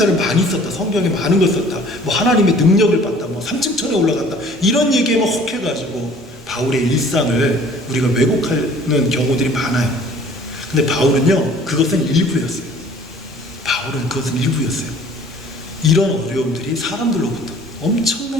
많이 썼다, 성경에 많은 걸 썼다, 하나님의 능력을 받다, 3층천에 올라갔다, 이런 얘기에만 혹해가지고 바울의 일상을 우리가 왜곡하는 경우들이 많아요. 근데 바울은요, 그것은 일부였어요. 이런 어려움들이 사람들로부터 엄청난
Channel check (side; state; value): both; normal; correlation 0.52